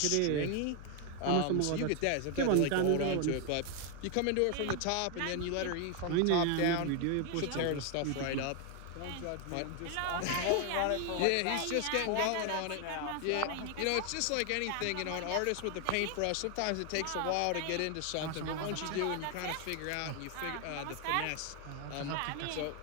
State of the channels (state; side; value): different; both; correlation 0.01